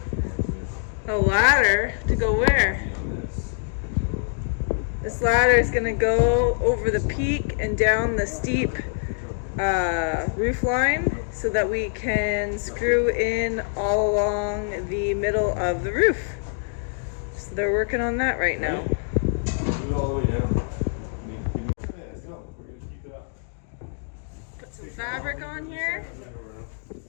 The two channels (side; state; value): right; silent; digital silence